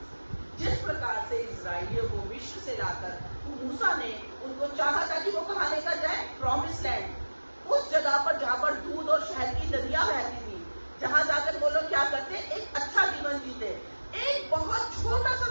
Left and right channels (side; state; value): both; inverted; correlation -1.00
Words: जिस प्रकार से इजराइलियों को मिस्र से लाकर मूसा ने उनको चाहा था कि वो कहाँ लेकर जाए, प्रॉमिस लैंड, उस जगह पर जहाँ पर दूध और शहद की नदियां बहती थी, जहाँ जाकर वो लोग क्या करते, एक अच्छा जीवन जीते। एक बहुत छोटा सा